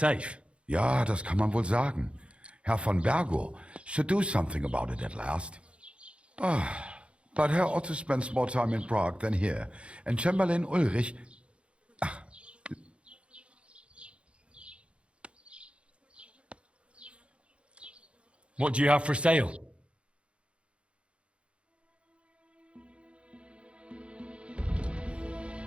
Ja, das kann man wohl sagen. Herr von Bergo should do something about it at last. But Herr Otto spends more time in Prague than here, and Chamberlain Ulrich... What do you have for sale?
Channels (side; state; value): left; late; 0.059 ms